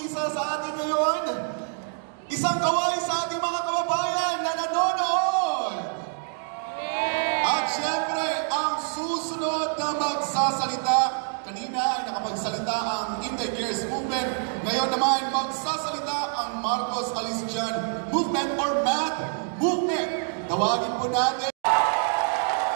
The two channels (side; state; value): left; silent; 61 dB below the other